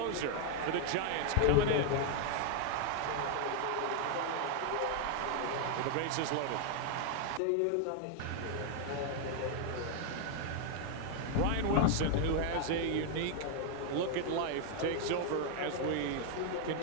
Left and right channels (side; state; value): both; different; correlation 0.00